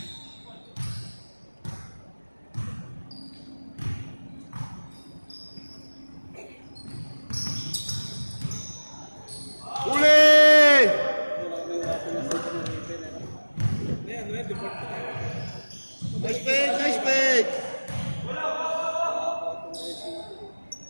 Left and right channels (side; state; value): both; inverted; correlation -1.00